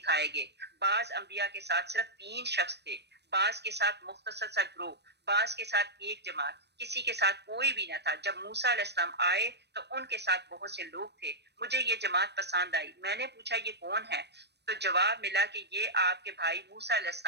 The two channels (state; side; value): late; left; 0.49 ms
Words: گے۔ بعض انبیاء کے ساتھ صرف 3 شخص تھے، بعض کے ساتھ مختصر سا گروہ، بعض کے ساتھ ایک جماعت، کسی کے ساتھ کوئی بھی نہ تھا۔ جب موسیٰ علیہ السلام آئے تو ان کے ساتھ بہت سے لوگ تھے، مجھے یہ جماعت پسند آئی۔ میں نے پوچھا، یہ کون ہے؟ تو جواب ملا کہ یہ آپ کے بھائی موسیٰ علیہ